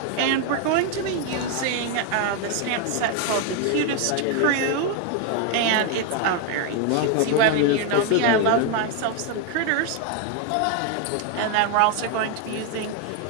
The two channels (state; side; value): different; both; correlation 0.01